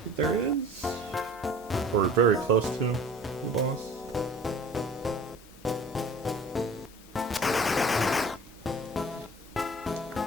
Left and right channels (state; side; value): normal; both; correlation 0.46